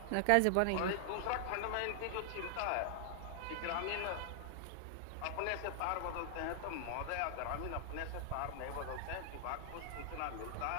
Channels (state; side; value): different; both; correlation 0.00